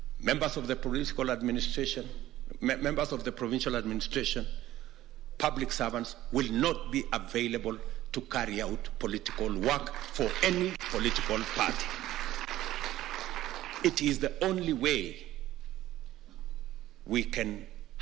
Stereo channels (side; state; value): left; quieter; 14.6 dB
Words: members of the political administration, members of the provincial administration, public servants will not be available to carry out political work for any political party. It is the only way we can